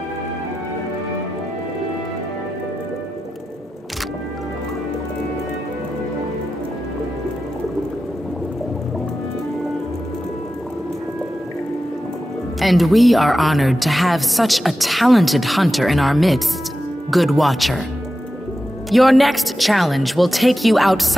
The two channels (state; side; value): normal; both; correlation 0.92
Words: And we are honored to have such a talented hunter in our midst, Good Watcher. Your next challenge will take you